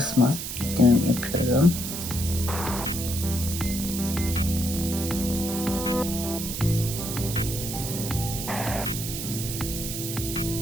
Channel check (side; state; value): right; noise; hiss, 5 dB below the sound